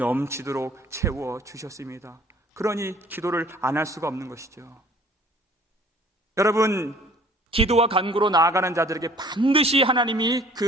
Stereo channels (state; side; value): normal; both; correlation 0.53